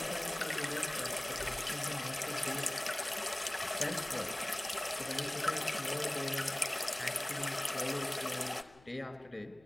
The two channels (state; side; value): noise; left; hum, 27 dB below the sound